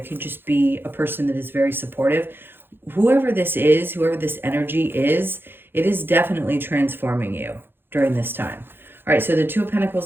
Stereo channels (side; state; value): left; late; 0.10 ms